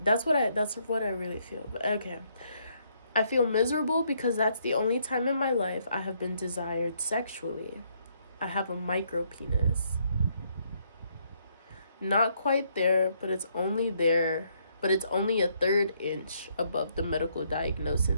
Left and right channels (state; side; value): inverted; both; correlation -0.71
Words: that's what I really feel. But okay. "I feel miserable because that's the only time in my life I have been desired sexually. I have a micro penis. Not quite there, but it's only a third inch above the medical